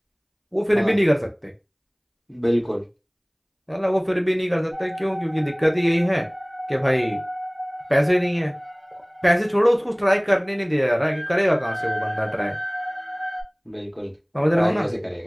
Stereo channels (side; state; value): both; identical; correlation 1.00